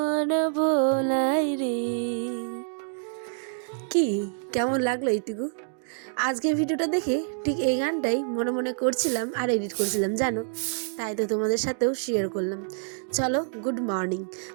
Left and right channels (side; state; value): left; silent; digital silence